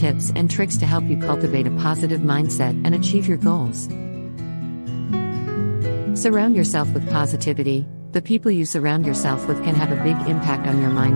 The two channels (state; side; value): inverted; both; correlation -1.00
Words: and tricks to help you cultivate a positive mindset and achieve your goals. Surround yourself with positivity. The people you surround yourself with can have a big impact on your